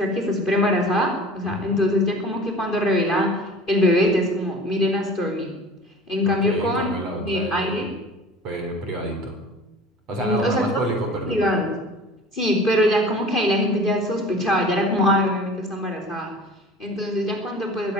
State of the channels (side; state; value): both; normal; correlation 0.42